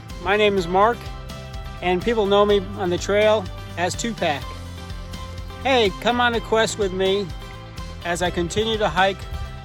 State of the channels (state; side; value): identical; both; correlation 1.00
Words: my name is Mark, and people know me on the trail as Tupac. Hey, come on a quest with me as I continue to hike